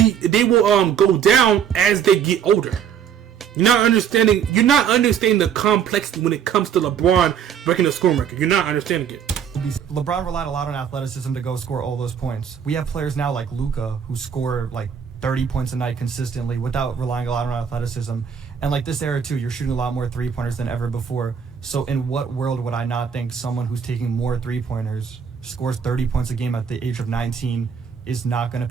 go down as they get older. You're not understanding the complexity when it comes to LeBron breaking the scoring record. You're not understanding it. LeBron relied a lot on athleticism to go score all those points. We have players now like Luka who score like 30 points a night consistently without relying a lot on athleticism. And like this era too, you're shooting a lot more three-pointers than ever before. So in what world would I not think someone who's taking more three-pointers, scores 30 points a game at the age of 19, is not going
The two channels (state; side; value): quieter; left; 7.9 dB